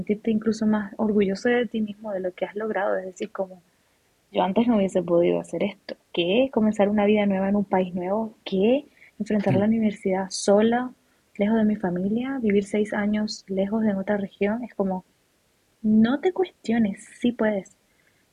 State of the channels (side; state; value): both; identical; correlation 1.00